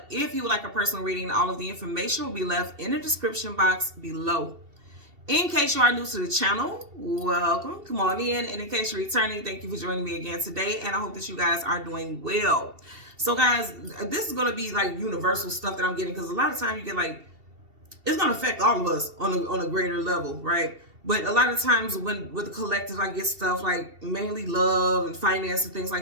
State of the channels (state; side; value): late; left; 2.7 ms